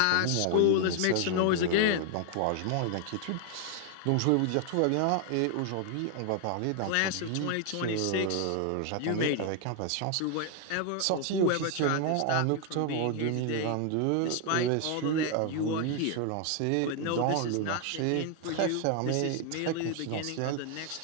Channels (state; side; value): different; both; correlation 0.00